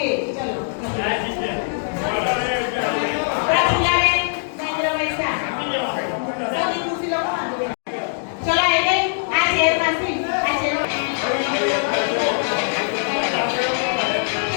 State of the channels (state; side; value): silent; right; digital silence